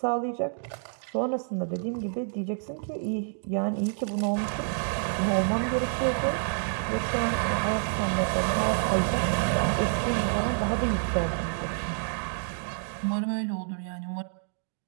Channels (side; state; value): left; silent; 59 dB below the other